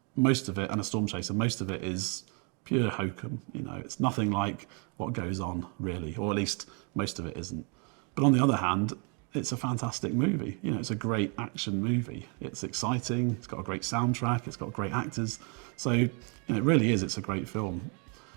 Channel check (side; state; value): left; quieter; 36.0 dB